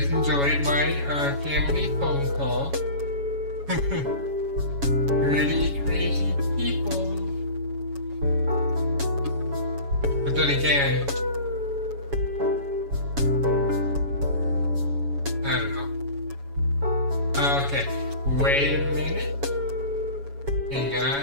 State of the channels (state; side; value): late; left; 7.2 ms